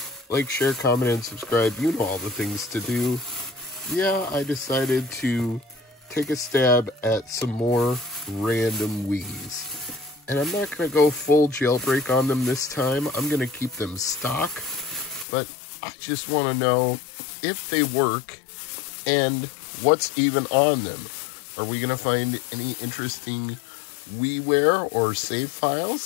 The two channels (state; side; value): drops out; right; at 15.2 s